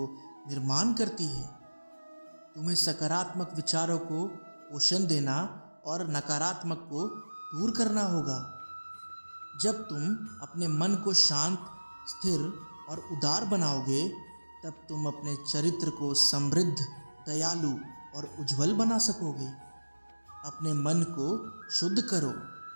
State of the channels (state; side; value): inverted; both; correlation -1.00